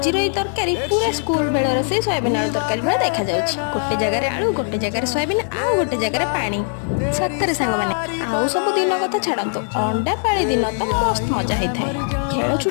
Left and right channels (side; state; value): right; silent; 66 dB below the other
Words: तरकारी पूरा स्कूल बेलर से सोयाबीन आलू तरकारी भाई देखा जाउछि। गोटे जगह आलू गोटे जगह सोयाबीन आउ गोटे जगह पानी। सतरे सांग मैंने आउ सब दिन कथा छाड़तु अंडा पाली दिन तो मस्त मजा होता है। खेल